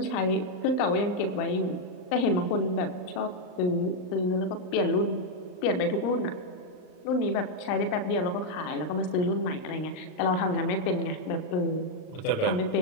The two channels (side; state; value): right; late; 39 ms